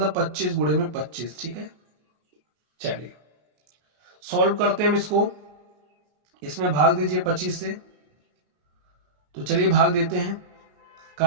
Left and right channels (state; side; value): late; left; 33 ms